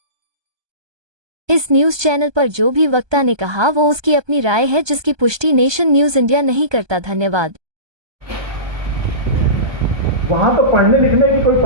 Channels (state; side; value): late; left; 1.2 ms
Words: इस न्यूज चैनल पर जो भी वक्ता ने कहा वो उसकी अपनी राय है, जिसकी पुष्टि नेशन न्यूज इंडिया नहीं करता। धन्यवाद। वहां तो पढ़ने लिखने की कोई